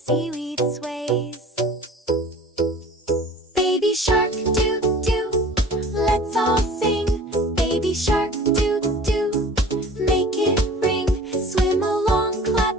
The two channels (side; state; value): both; normal; correlation 0.44